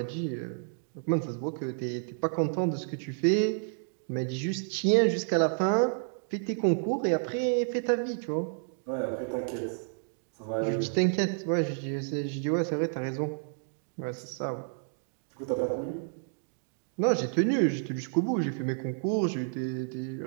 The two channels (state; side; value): silent; left; digital silence